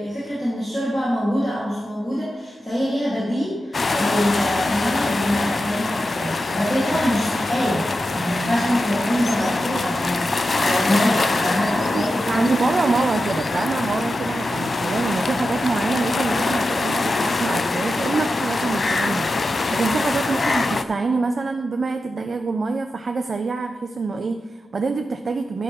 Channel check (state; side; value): normal; both; correlation 0.90